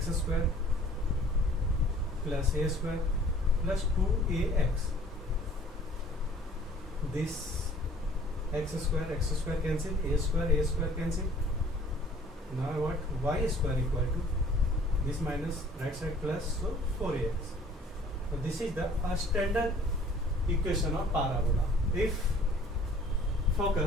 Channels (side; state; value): both; normal; correlation 0.53